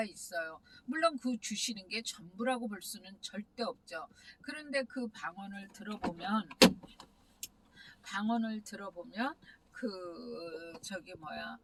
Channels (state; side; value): identical; both; correlation 1.00